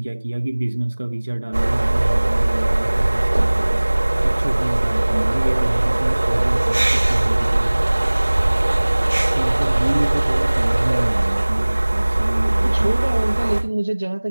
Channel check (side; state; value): both; inverted; correlation -1.00